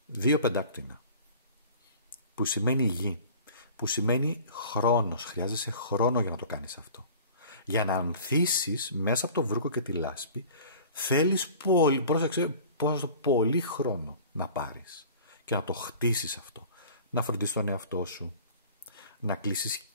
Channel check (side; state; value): both; inverted; correlation -0.44